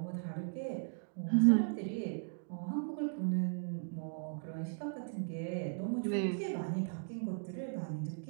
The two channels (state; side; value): silent; left; digital silence